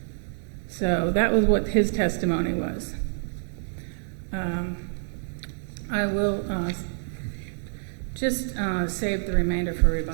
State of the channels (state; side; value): silent; left; digital silence